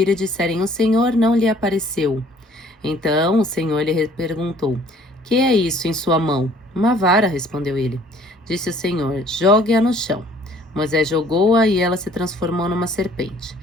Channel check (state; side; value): normal; both; correlation 0.57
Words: e disserem: O Senhor não lhe apareceu? Então o Senhor lhe perguntou: Que é isso em sua mão? Uma vara, respondeu ele. Disse o Senhor: Jogue-a no chão. Moisés jogou-a e ela se transformou numa serpente.